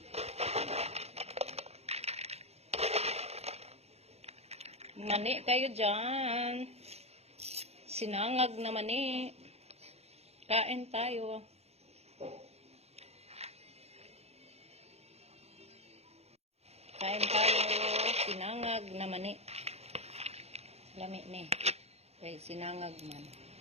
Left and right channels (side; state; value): left; late; 0.30 ms